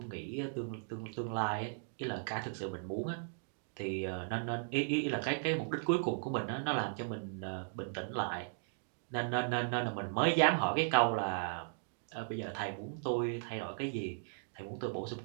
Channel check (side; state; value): left; silent; digital silence